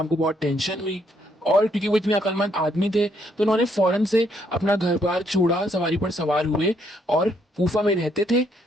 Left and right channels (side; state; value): both; normal; correlation 0.71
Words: को बहुत टेंशन हुई, और क्योंकि वो इतने अक्लमंद आदमी थे तो उन्होंने फौरन से अपना घर बार छोड़ा, सवारी पर सवार हुए और कूफा में रहते थे,